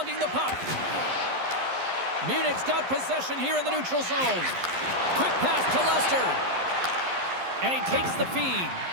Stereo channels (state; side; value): late; left; 11 ms